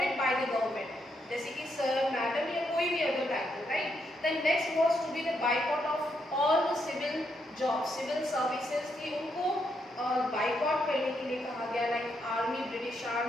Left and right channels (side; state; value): both; normal; correlation 0.78